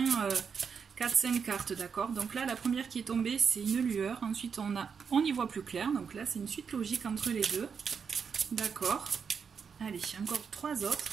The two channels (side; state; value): left; quieter; 6.3 dB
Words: 4-5 cartes, d'accord? Donc là, la première qui est tombée, c'est une lueur. Ensuite, on y voit plus clair. Donc là, c'est une suite logique entre les deux. D'accord. Allez, encore 3 autres.